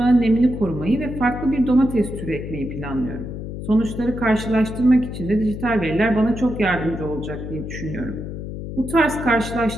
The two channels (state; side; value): noise; left; hum, 8 dB below the sound